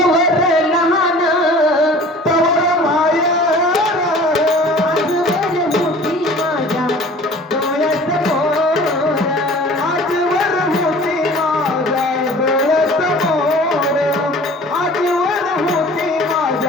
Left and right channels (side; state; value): both; normal; correlation 0.45